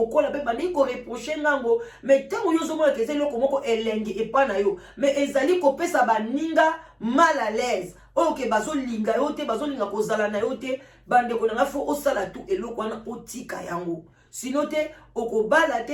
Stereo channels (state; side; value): identical; both; correlation 1.00